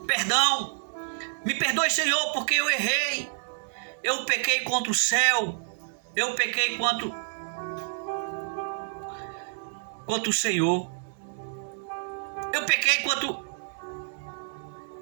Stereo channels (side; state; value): left; silent; 59 dB below the other